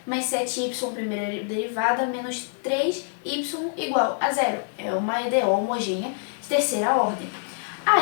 mais 7y primeira derivada menos 3y igual a zero. É uma EDO homogênea de terceira ordem.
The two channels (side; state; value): right; silent; 61 dB below the other